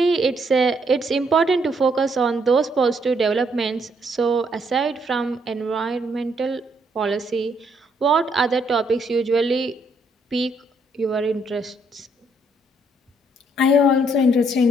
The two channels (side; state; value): both; normal; correlation 0.71